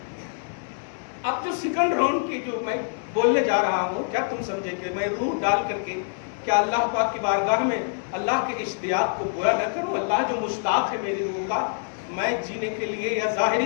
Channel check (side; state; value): right; silent; 61 dB below the other